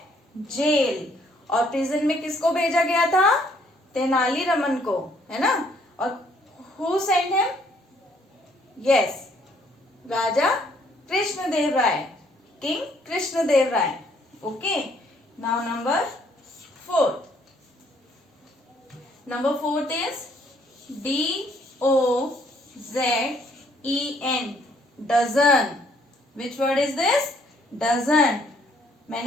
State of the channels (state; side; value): normal; both; correlation 0.65